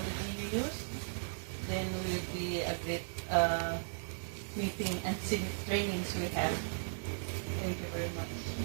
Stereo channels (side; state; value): left; silent; digital silence